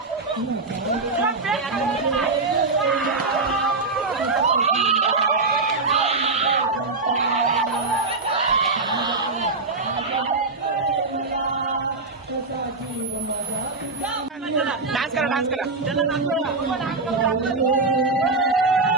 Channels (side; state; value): left; quieter; 3.7 dB